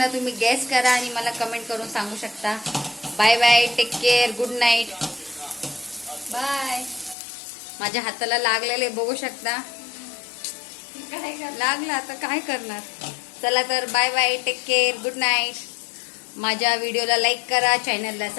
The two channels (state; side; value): drops out; right; at 7.2 s